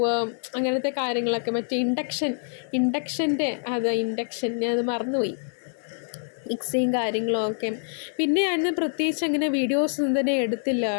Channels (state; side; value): silent; right; digital silence